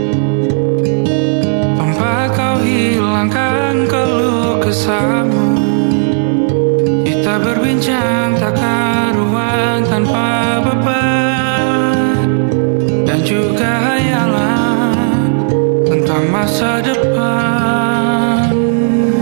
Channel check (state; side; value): silent; left; 71 dB below the other